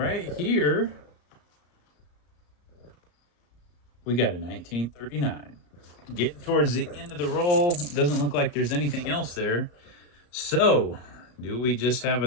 here, we got a 1939. Getting towards the end of the roll. Doesn't look like there's anything else there. So, do we just have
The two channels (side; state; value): right; late; 34 ms